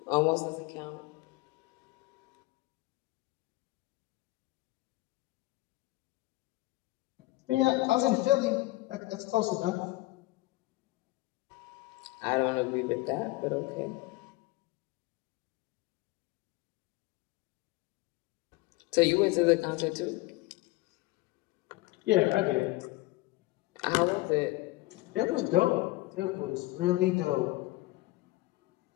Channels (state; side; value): quieter; right; 20.2 dB